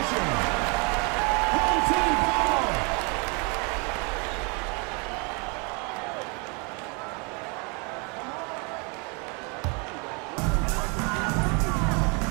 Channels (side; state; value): left; quieter; 32.5 dB